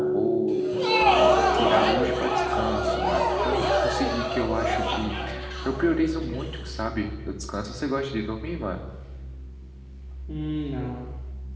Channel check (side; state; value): both; identical; correlation 1.00